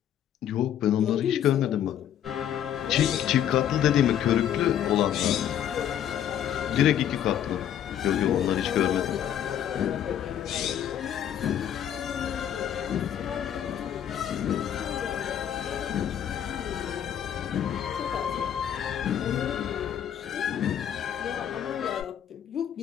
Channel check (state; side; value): quieter; right; 10.1 dB